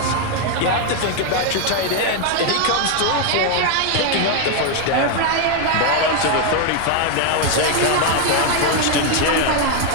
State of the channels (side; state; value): both; different; correlation 0.01